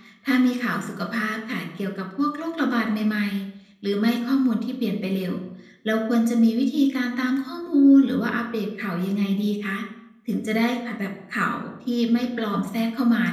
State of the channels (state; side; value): identical; both; correlation 1.00